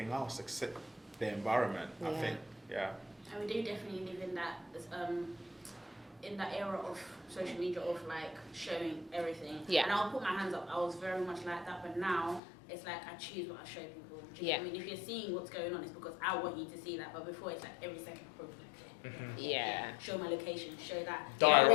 else except the environment, I think. And we do definitely live in that era of social media of like showing everything. And I'll put my hands up, I was very much like that, but now it's like I choose what I show people. I mean, if you're seeing what's going on, it's because I want you to see that. But before, it's like every second proof. Show my location, show that.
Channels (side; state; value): right; drops out; at 12.4 s